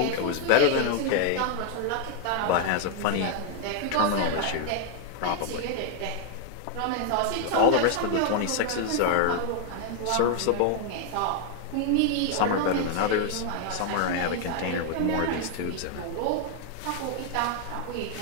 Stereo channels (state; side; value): different; both; correlation 0.00